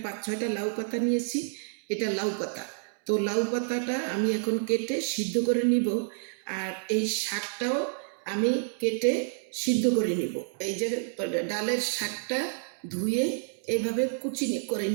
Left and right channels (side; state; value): left; silent; 59 dB below the other